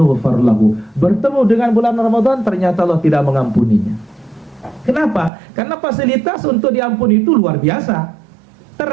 lahu, bertemu dengan bulan Ramadan ternyata Allah tidak mengampuninya. Kenapa? Karena fasilitas untuk diampuni itu luar biasa.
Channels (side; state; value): left; drops out; at 5.3 s